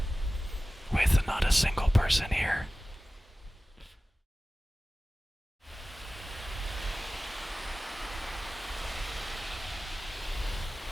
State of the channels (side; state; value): both; normal; correlation 0.96